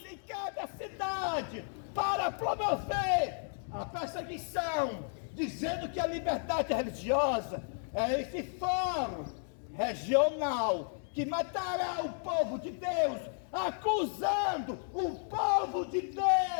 em cada cidade para promover a perseguição, dizendo que a liberdade religiosa é esse fórum regional que matará o povo de Deus, acusando o povo de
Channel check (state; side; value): silent; right; 56 dB below the other